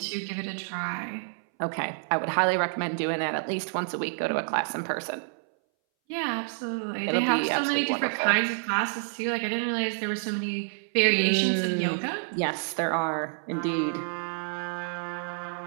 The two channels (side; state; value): left; silent; 59 dB below the other